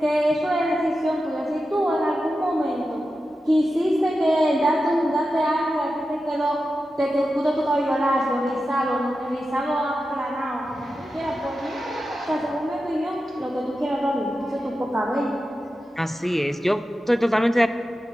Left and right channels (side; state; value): both; normal; correlation 0.91